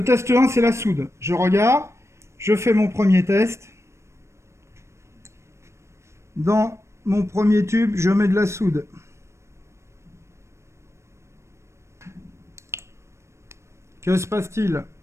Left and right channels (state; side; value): late; left; 0.13 ms